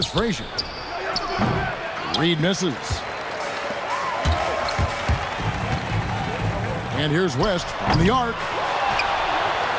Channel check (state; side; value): identical; both; correlation 1.00